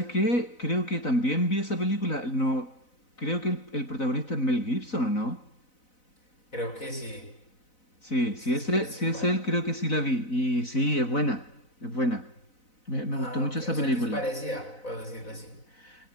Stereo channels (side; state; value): right; late; 4.0 ms